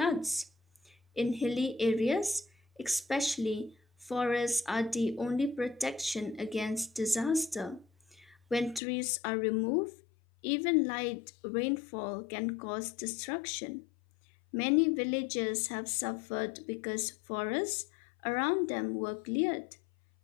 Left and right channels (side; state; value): right; drops out; at 8.8 s